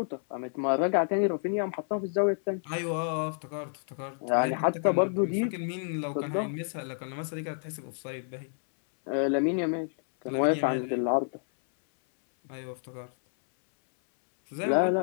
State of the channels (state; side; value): silent; right; 58 dB below the other